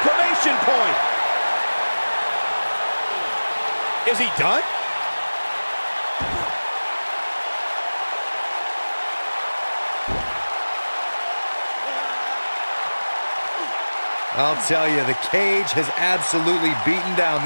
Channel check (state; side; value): inverted; both; correlation -1.00